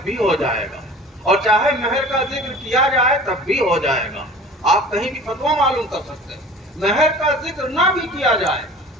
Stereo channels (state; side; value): normal; both; correlation 0.42